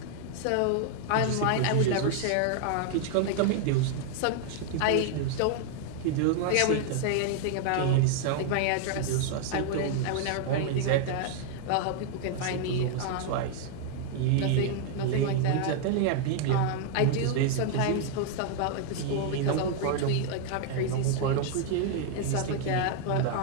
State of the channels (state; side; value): different; both; correlation 0.00